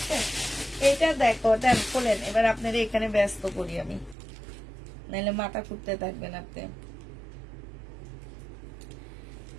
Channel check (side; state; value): left; drops out; at 4.2 s